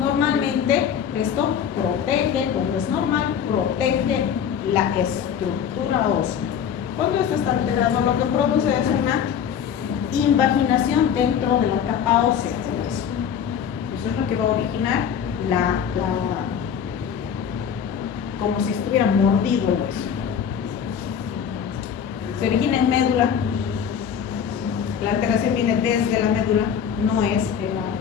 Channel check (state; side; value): quieter; right; 8.1 dB